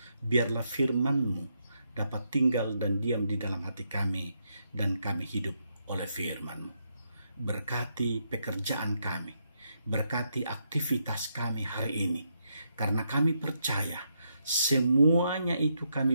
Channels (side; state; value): both; inverted; correlation -0.79